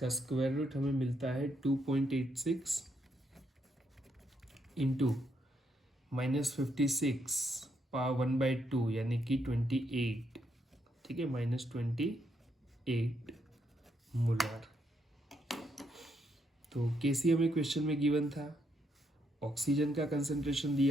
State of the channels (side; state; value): both; normal; correlation 0.77